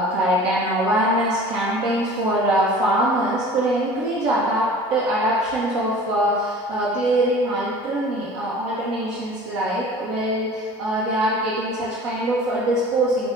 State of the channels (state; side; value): normal; both; correlation 0.43